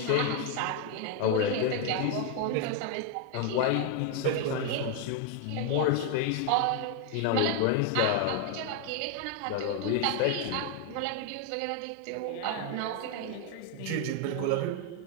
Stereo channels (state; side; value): different; both; correlation 0.01